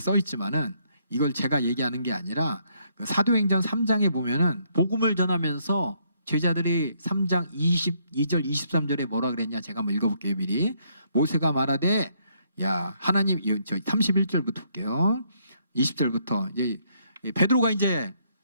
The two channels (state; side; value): inverted; both; correlation -0.71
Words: 써 있지만은 이걸 제가 얘기하는 게 아니라 그 사도행전 3장에 보면은 복음을 전하면서 제자들이 3장 22절 23절에 뭐라 그랬냐, 제가 한번 읽어볼게요. 미리. 모세가 말하되 야 하나님, 저 31절부터 볼게요. 20절부터 이제 베드로가 이제